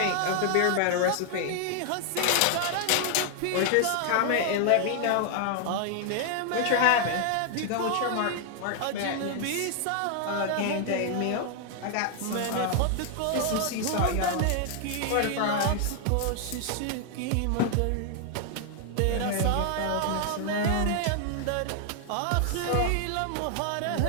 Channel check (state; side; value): different; both; correlation 0.00